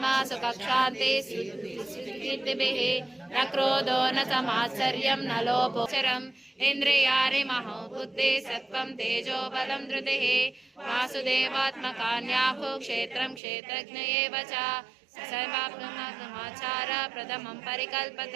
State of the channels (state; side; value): drops out; left; at 13.4 s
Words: सुखशान्ति कीर्तिभिः न क्रोधो न समात्सर्यं न लोभोचरम् इन्द्रियाणि महो बुद्धि सत्त्वं तेजो बलं धृतिः वासुदेवात्मकान्याहु क्षेत्रं क्षेत्रज्ञ एव च सर्वात्ममाचार प्रथमं परिकल्पत